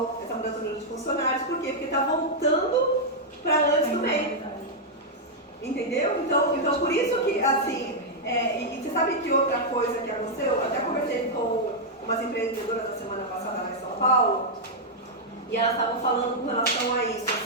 essa mudança do número de funcionários, por quê? Porque está voltando para antes do meio, entendeu? Então por isso que assim... e você sabe que outra coisa que aconteceu? Eu até conversei com umas empreendedoras da semana passada lá em São Paulo e elas estavam falando com relação a isso,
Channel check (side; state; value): both; normal; correlation -0.04